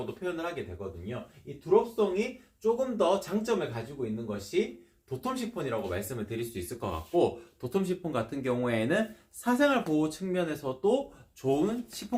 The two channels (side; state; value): both; identical; correlation 1.00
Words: 표현을 하게 되거든요. 이 드롭송이 조금 더 장점을 가지고 있는 것이 도톰 시폰이라고 말씀을 드릴 수 있을 것 같고 도톰 시폰 같은 경우에는 사생활 보호 측면에서도 좋은